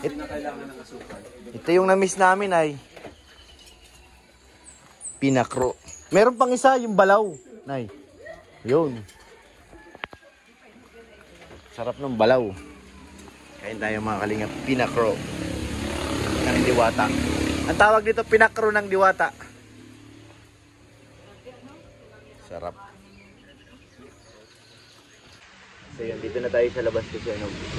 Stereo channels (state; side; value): identical; both; correlation 1.00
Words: Ito yung na-miss namin ay pinakro. Meron pang isa, yung balaw. Nay. Yun. Sarap ng balaw. Kain tayo mga kalingap. Pinakro ng diwata. Ang tawag dito, pinakro ng diwata. Sarap. So yun, dito na tayo sa labas kasi ano,